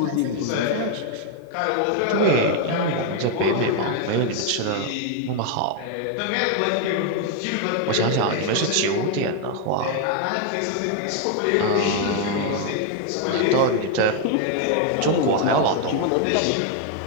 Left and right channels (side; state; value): both; different; correlation 0.01